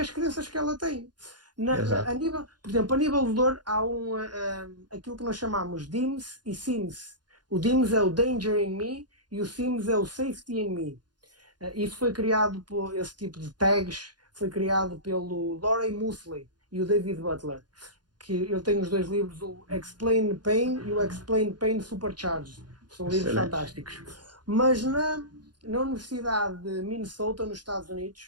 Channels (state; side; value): late; left; 0.70 ms